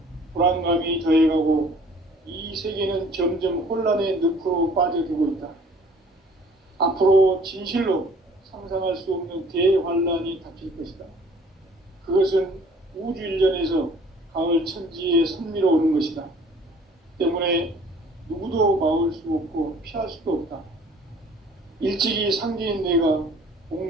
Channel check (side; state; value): both; normal; correlation 0.53